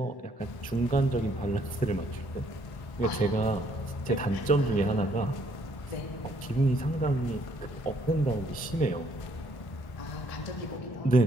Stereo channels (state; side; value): late; right; 1.1 ms